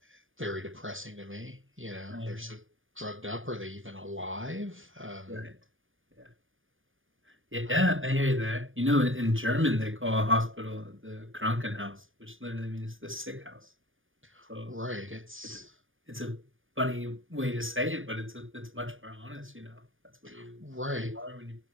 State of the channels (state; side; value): late; left; 0.58 ms